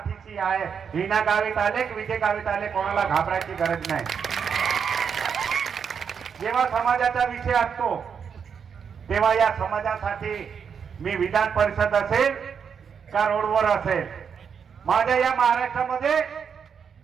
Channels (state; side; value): quieter; left; 6.9 dB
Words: आहे. हिना गावीत आले की विजय गावीत आले, कोणाला घाबरायची गरज नाही. जेव्हा समाजाचा विषय असतो तेव्हा या समाजासाठी मी विधान परिषद असेल का रोडवर असेल, माझ्या या महाराष्ट्रामध्ये